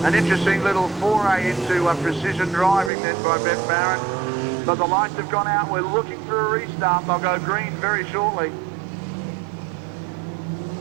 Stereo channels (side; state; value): left; drops out; at 2.9 s